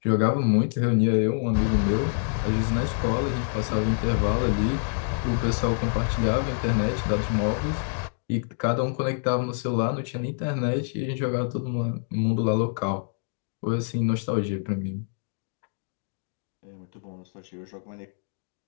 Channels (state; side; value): silent; right; digital silence